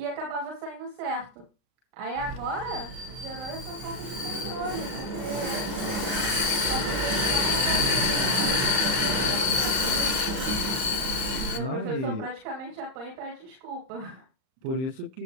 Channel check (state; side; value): late; left; 39 ms